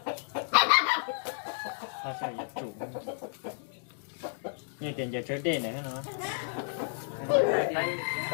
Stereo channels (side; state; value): right; silent; digital silence